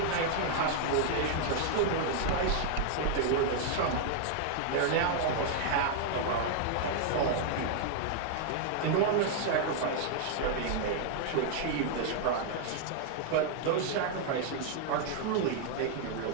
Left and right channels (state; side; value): different; both; correlation -0.01